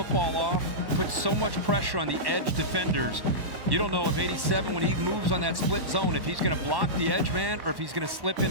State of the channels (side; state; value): left; late; 1.1 ms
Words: off, puts so much pressure on the edge defenders. You don't know if 87, when he moves on that split zone, if he's going to block the edge man or if he's going to slip